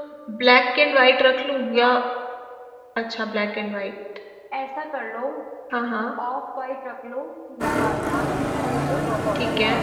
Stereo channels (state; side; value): identical; both; correlation 1.00